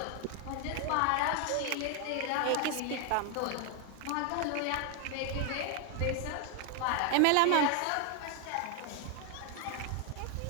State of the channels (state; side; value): different; both; correlation 0.00